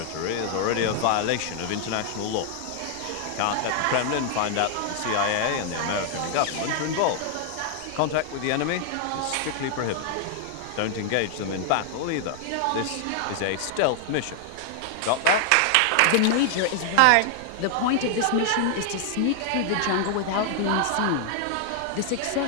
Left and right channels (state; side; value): different; both; correlation 0.00